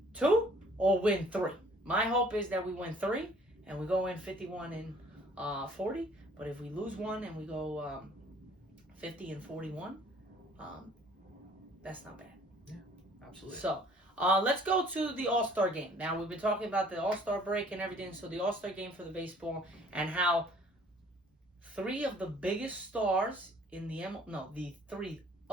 2 or win 3. My hope is that we win 3 and we go in 51-40. But if we lose 1 and we go 50-41, that's not bad. Yeah, absolutely. So let's go to the All-Star game. Now, we've been talking about the All-Star break and everything. So the All-Star game for the baseball and how 3 of the biggest stars in the the 3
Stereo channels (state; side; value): normal; both; correlation 0.56